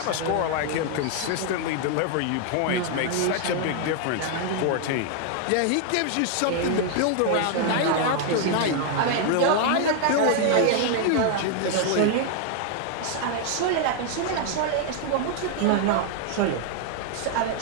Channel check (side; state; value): both; different; correlation 0.00